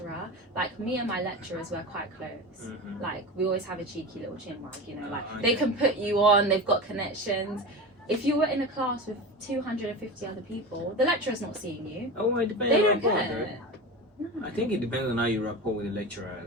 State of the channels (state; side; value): normal; both; correlation 0.27